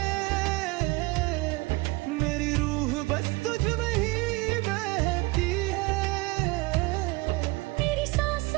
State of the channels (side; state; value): left; quieter; 23.5 dB